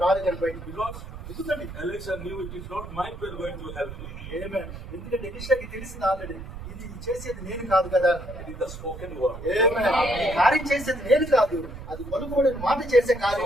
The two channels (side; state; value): right; noise; rumble, 11 dB below the sound